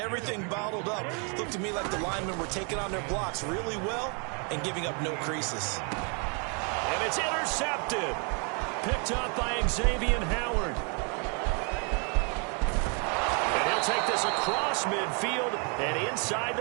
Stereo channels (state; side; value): quieter; left; 36.9 dB